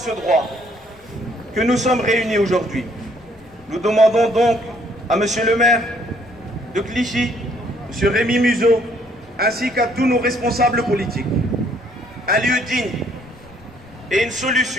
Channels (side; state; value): left; noise; rumble, 28 dB below the sound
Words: droit que nous sommes réunis aujourd'hui. Nous demandons donc à Monsieur le maire de Clichy, Monsieur Rémi Muzeau, ainsi qu'à tous nos responsables politiques, un lieu digne et une